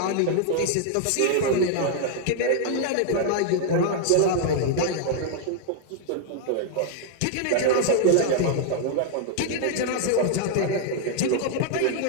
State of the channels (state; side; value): different; both; correlation 0.00